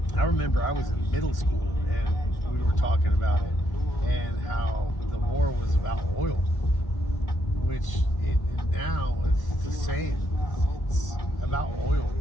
I remember I was in middle school and we were talking about it and how the war was about oil, which now it's the same. It's about oil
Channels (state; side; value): late; right; 1.5 ms